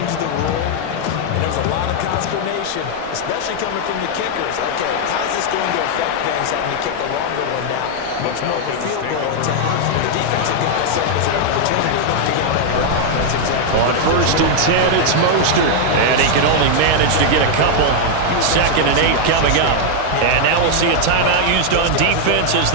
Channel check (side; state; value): both; different; correlation 0.00